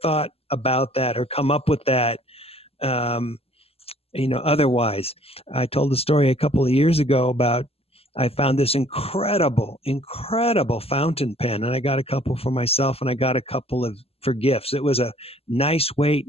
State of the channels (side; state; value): right; late; 0.29 ms